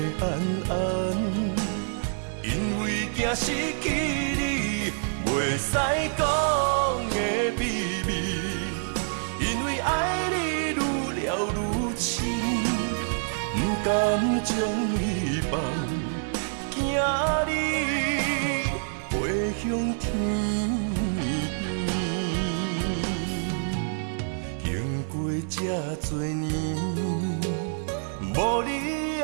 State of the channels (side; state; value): left; silent; digital silence